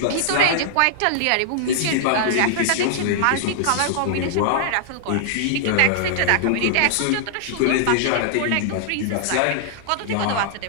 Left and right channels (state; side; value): different; both; correlation -0.01